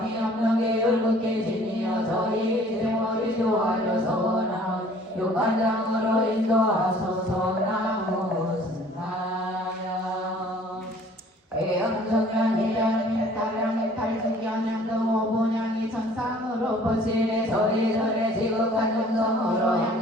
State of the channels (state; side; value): normal; both; correlation 0.53